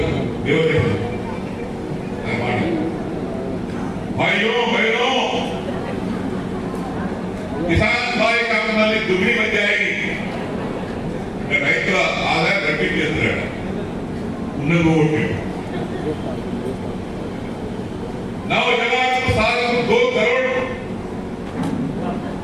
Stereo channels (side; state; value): both; identical; correlation 1.00